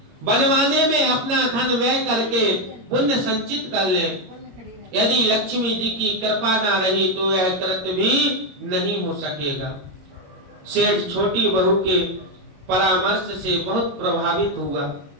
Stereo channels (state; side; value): late; left; 21 ms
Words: बनवाने में अपना धन व्यय करके पुण्य संचित कर लें। यदि लक्ष्मी जी की कृपा ना रही तो यह कृत्य भी नहीं हो सकेगा। सेठ छोटी बहू के परामर्श से बहुत प्रभावित हुआ